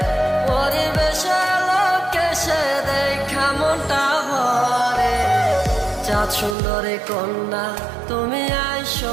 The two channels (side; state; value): left; drops out; at 6.6 s